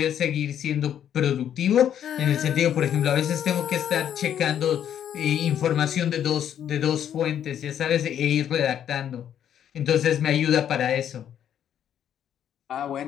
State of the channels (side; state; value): right; quieter; 9.8 dB